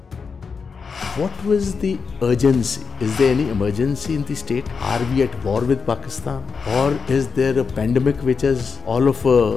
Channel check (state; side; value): quieter; right; 5.5 dB